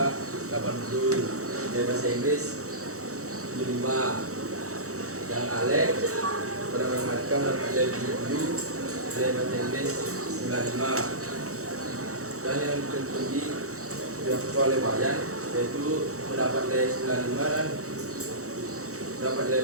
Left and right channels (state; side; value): late; left; 0.65 ms